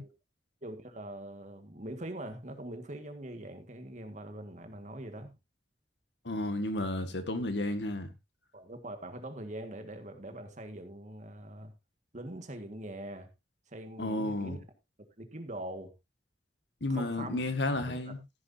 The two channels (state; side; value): normal; both; correlation 0.45